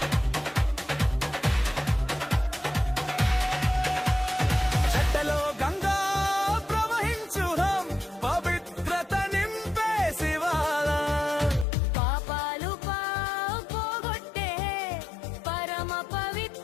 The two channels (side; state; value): right; drops out; at 11.7 s